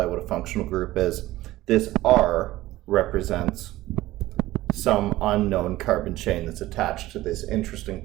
what a functional group is, this R represents some unknown carbon chain that's attached to this interesting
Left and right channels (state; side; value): quieter; left; 16.6 dB